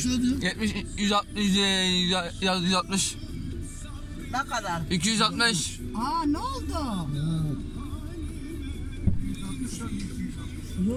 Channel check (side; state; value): both; identical; correlation 1.00